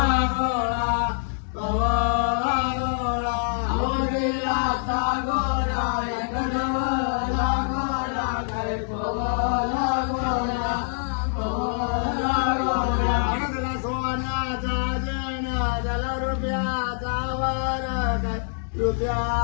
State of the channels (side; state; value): right; silent; digital silence